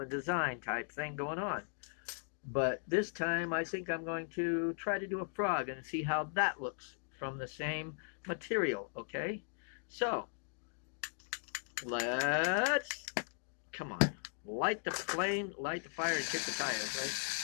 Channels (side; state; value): right; silent; digital silence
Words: design type thing going on. But this time I think I'm going to try to do a frog and see how that looks from the same material, okay? So, let's, come on, light the flame, light the fire, and kick the tires,